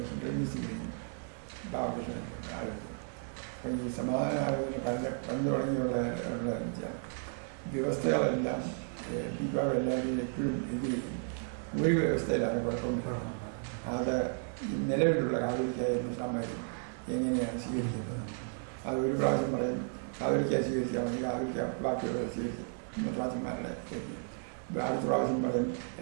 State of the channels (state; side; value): silent; left; 55 dB below the other